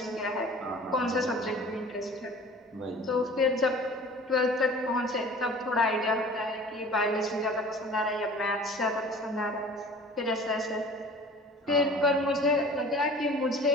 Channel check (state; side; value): normal; both; correlation 0.44